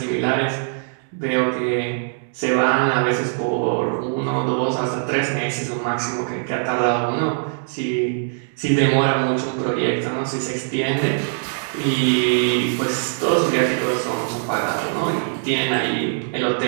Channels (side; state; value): left; silent; 64 dB below the other